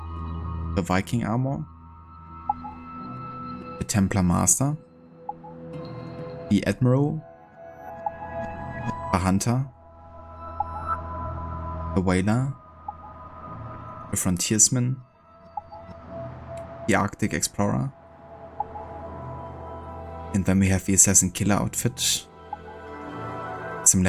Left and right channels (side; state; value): both; identical; correlation 1.00